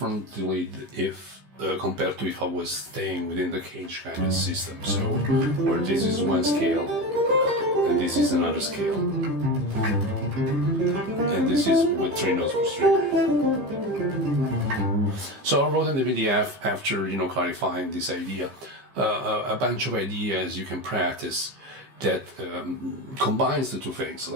if compared to if I was staying within the cage kind of system. So where this is one scale and this is another scale, and this is with 3 notes per string. So I wrote in the PDF after clarifying this idea a bunch of ideas you can practice that combines the 2 things.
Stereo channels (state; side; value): late; left; 15 ms